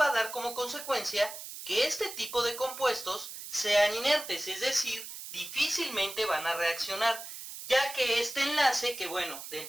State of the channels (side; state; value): right; noise; hiss, 10 dB below the sound